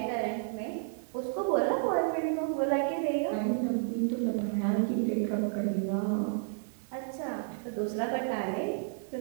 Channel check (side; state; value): left; silent; digital silence